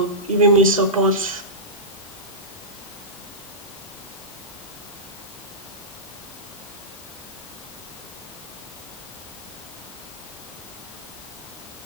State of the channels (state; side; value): normal; both; correlation -0.16